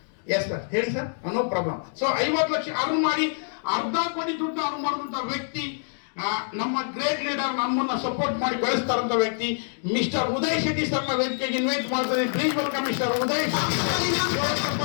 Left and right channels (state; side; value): silent; right; digital silence